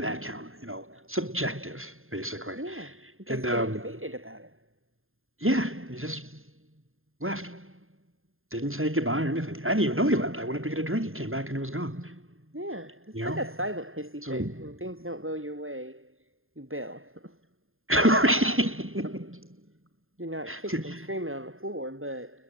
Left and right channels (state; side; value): late; left; 0.61 ms